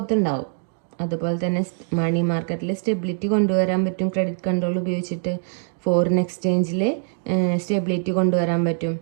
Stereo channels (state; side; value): silent; left; digital silence